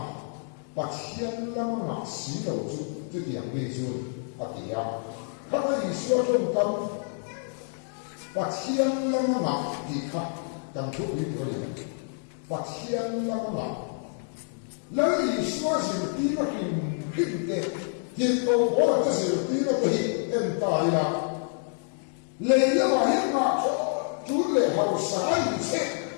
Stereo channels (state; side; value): silent; right; 58 dB below the other